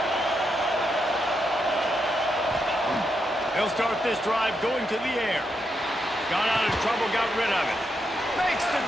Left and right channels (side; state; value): both; normal; correlation 0.82